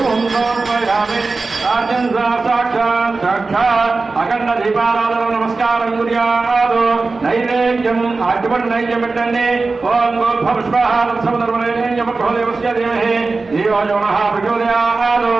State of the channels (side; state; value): left; quieter; 3.8 dB